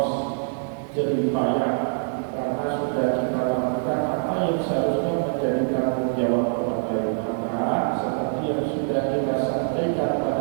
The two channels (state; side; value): silent; left; 62 dB below the other